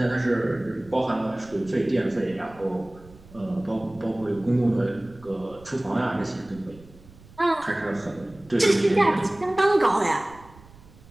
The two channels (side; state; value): right; noise; rumble, 23 dB below the sound